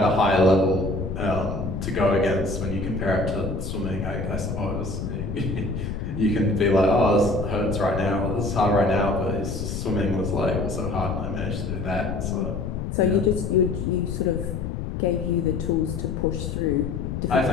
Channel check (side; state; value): left; noise; rumble, 4 dB below the sound